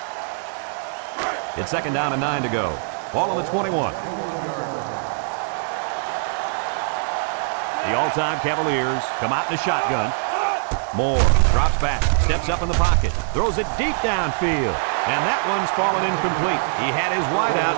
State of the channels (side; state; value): left; silent; digital silence